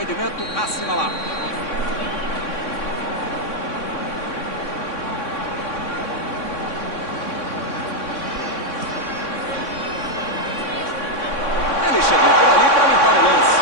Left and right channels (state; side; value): late; right; 3.6 ms